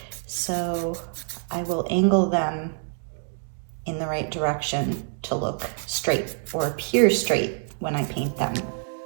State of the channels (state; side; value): silent; left; 61 dB below the other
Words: so I will angle them in the right direction to look straight or appear straight when I paint them.